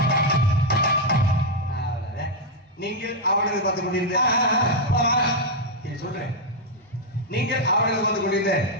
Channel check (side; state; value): both; normal; correlation -0.01